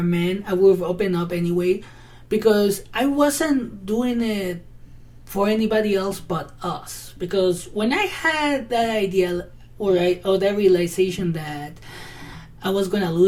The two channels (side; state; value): both; identical; correlation 1.00